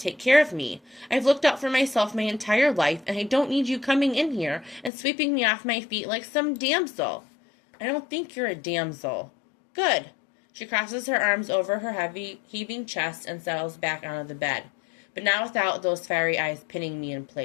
take care of me. I've looked out for myself my entire life, and I don't need you coming in here and sweeping me off my feet like some damsel. I don't think you're a damsel. Good. She crosses her arms over her heavy, heaving chest and settles back onto the bed. but not without those fiery eyes pinning me in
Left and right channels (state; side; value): drops out; right; at 4.9 s